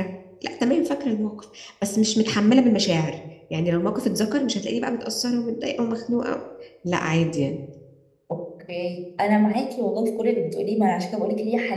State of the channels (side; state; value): both; identical; correlation 1.00